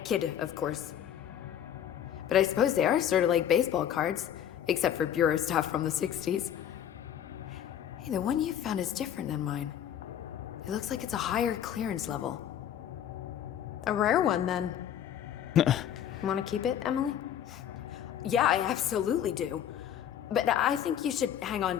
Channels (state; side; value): quieter; right; 10.0 dB